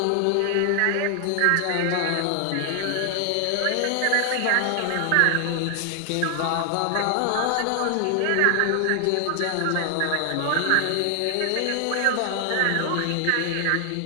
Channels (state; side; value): different; both; correlation 0.00